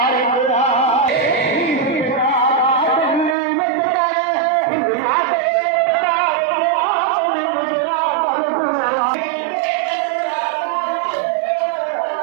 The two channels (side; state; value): left; drops out; at 3.4 s